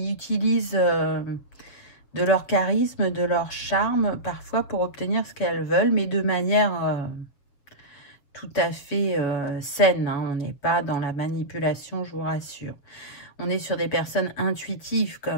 utilisent de leur charisme, de leur charme, parfois pour obtenir ce qu'elles veulent, mais de manière tout à fait saine. Hein. On n'est pas dans la manipulation, je vous rassure. On est sur des personnes intuitives quand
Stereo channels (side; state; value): right; late; 7.5 ms